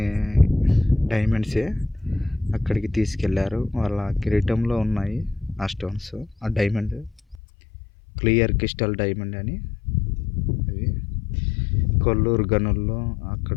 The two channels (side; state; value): right; drops out; at 7.4 s